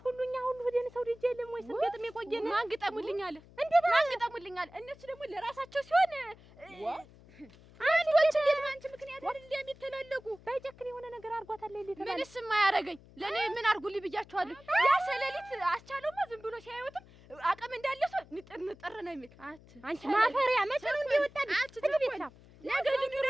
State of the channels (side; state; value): left; noise; hum, 23 dB below the sound